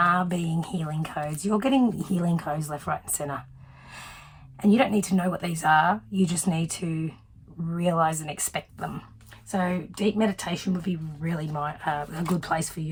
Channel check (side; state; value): both; identical; correlation 1.00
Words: being healing codes. You're getting healing codes left, right and centre. And you don't need to know what these are. You just need to realise and expect them. So deep meditation would be really a good place for